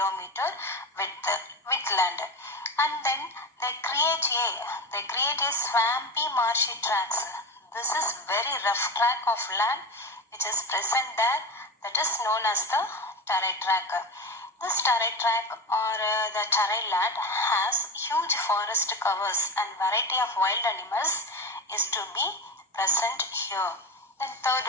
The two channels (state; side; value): normal; both; correlation 0.22